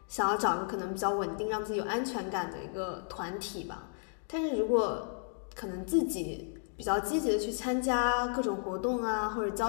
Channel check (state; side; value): silent; right; digital silence